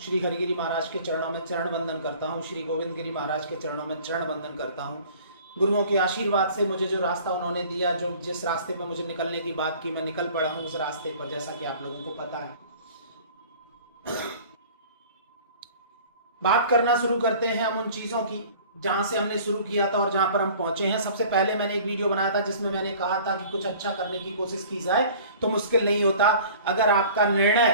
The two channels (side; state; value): both; inverted; correlation -0.48